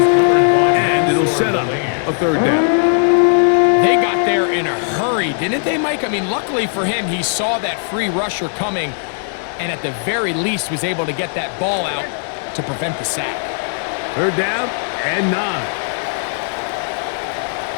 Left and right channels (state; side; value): silent; right; digital silence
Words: it'll set up a 3rd down. They got there in a hurry, didn't they, Mike? I mean, luckily for him, he saw that free rusher coming, and at the very least was able to get that ball out to prevent the sack. 3rd down and 9.